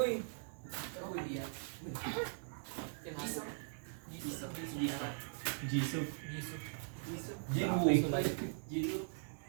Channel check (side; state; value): left; silent; 51 dB below the other